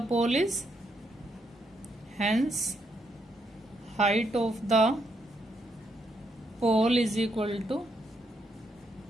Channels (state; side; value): normal; both; correlation 0.77